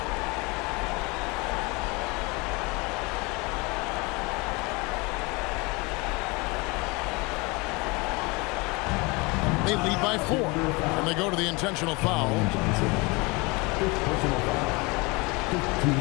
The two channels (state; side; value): quieter; right; 26.5 dB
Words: They lead by 4, and they go to the intentional foul. Fifth personal foul. 15